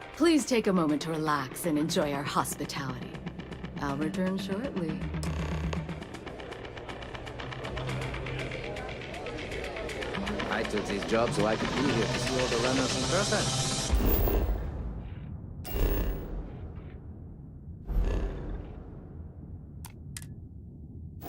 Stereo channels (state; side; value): identical; both; correlation 1.00